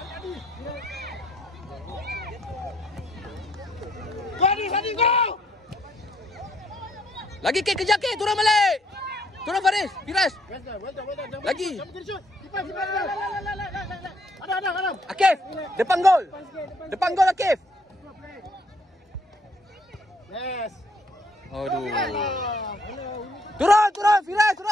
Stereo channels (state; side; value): normal; both; correlation 0.68